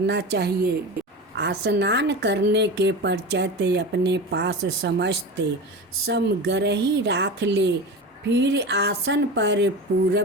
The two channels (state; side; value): normal; both; correlation 0.28